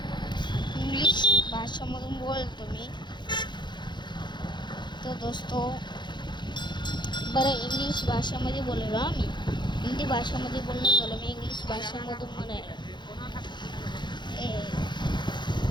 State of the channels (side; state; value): right; late; 0.22 ms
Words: इंग्लिश भाषेमधून बोलतो मी तो दोस्तो. बरं इंग्लिश भाषेमध्ये बोललो आम्ही, हिंदी भाषेमध्ये बोलणं झालं, मी इंग्लिश भाषेमधून म्हणायला